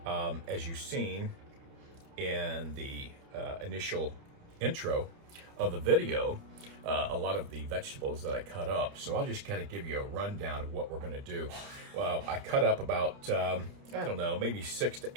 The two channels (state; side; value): late; left; 30 ms